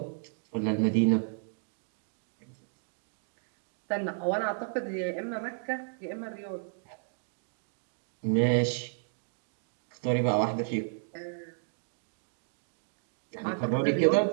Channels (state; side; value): silent; left; digital silence